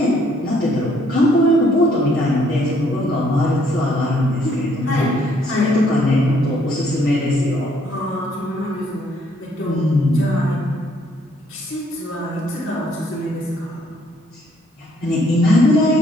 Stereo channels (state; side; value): normal; both; correlation 0.66